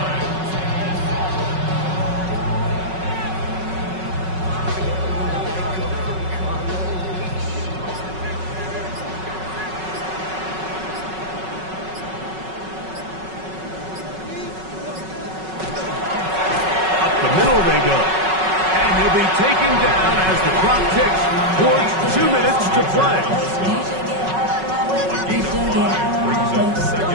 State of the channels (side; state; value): left; late; 5.4 ms